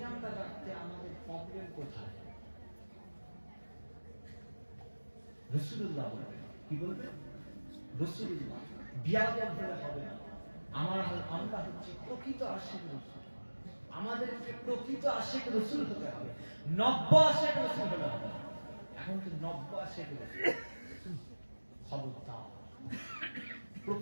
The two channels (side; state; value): both; inverted; correlation -1.00